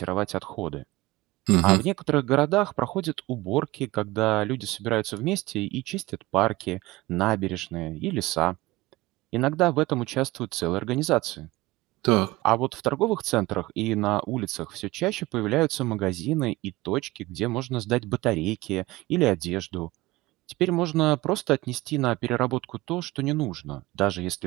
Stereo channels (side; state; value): left; quieter; 19.9 dB